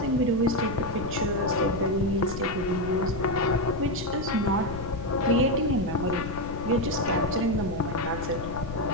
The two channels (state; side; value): noise; left; rumble, 9 dB below the sound